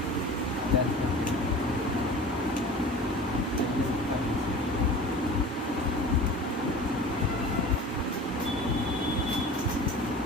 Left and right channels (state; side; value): normal; both; correlation 0.38